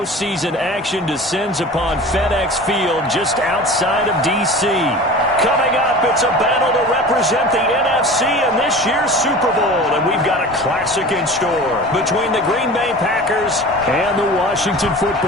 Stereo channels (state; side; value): normal; both; correlation 0.37